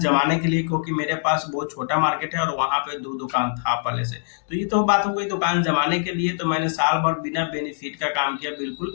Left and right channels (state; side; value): silent; right; digital silence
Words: के लिए, क्योंकि मेरे पास बहुत छोटा मार्केट है और वहाँ पे 2 दुकान था पहले से। तो ये तो बात हो गई दुकान जमाने के लिए, तो मैंने साल भर बिना बेनिफिट का काम किया, बिल्कुल